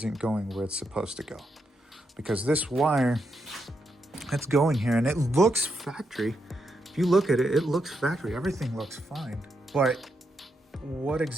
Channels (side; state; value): both; normal; correlation 0.82